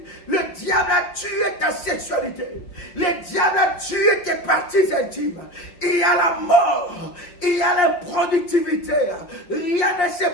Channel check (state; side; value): late; right; 5.6 ms